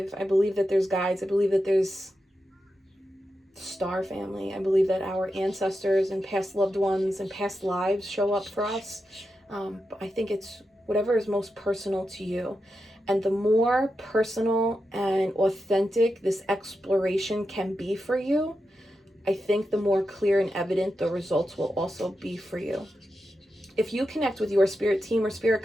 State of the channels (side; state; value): both; normal; correlation 0.88